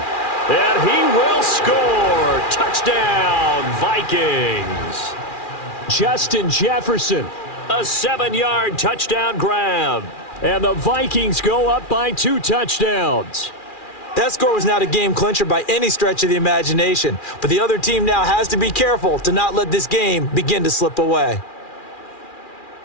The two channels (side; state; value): right; late; 2.4 ms